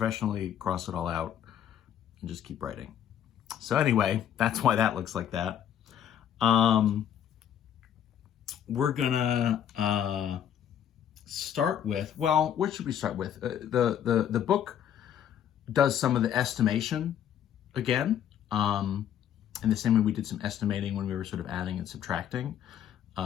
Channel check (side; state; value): right; quieter; 9.8 dB